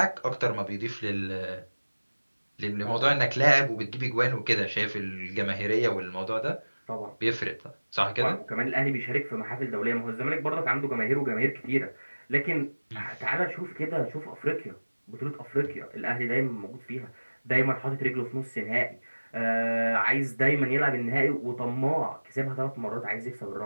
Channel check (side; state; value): both; inverted; correlation -1.00